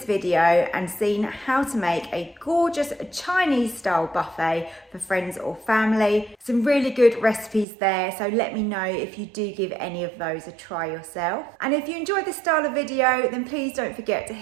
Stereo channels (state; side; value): drops out; left; at 7.7 s